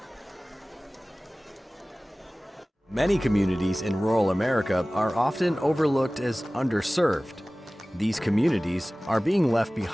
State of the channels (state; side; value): normal; both; correlation 0.98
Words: Many communities in rural America are often overlooked as underserved. These communities are being left